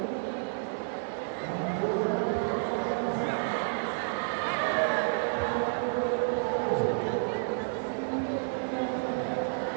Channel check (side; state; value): left; silent; digital silence